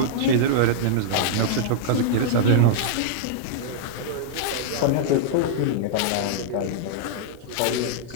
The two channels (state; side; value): different; both; correlation -0.01